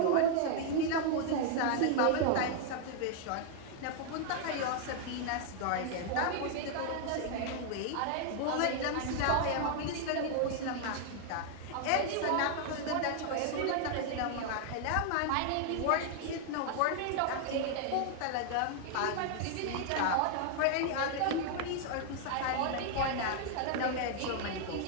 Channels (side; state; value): both; different; correlation 0.00